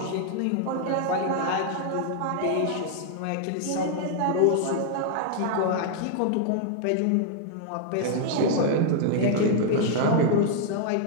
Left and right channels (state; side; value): different; both; correlation 0.00